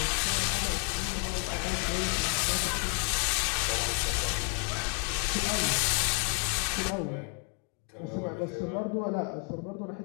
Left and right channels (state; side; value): quieter; right; 37.1 dB